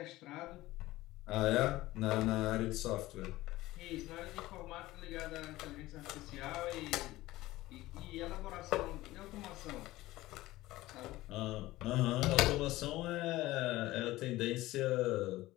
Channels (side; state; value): right; quieter; 17.6 dB